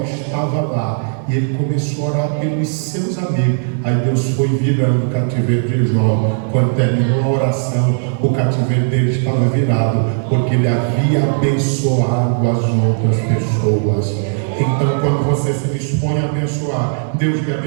estava lá e ele começou a orar pelos seus amigos. Aí Deus foi virando o cativeiro de Jó. Quando terminou a oração, o cativeiro dele estava virado, porque ele havia abençoado as outras pessoas. Então, quando você se dispõe a abençoar, Deus lhe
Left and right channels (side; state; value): left; silent; digital silence